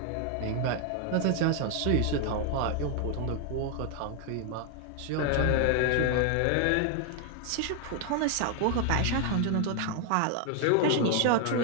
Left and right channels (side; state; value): both; different; correlation 0.00